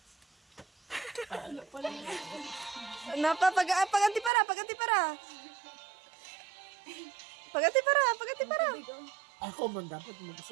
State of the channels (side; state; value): left; drops out; at 4.3 s